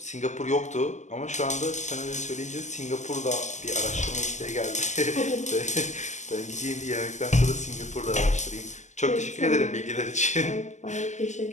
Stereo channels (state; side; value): late; right; 0.34 ms